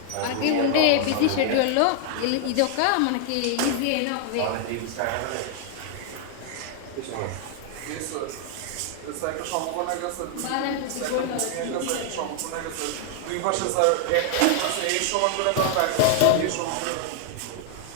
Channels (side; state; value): both; different; correlation 0.00